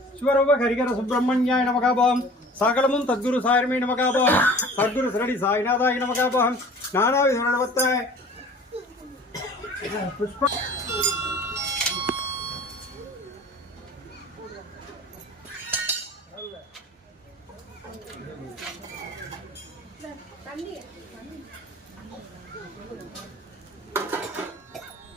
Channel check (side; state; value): both; normal; correlation 0.45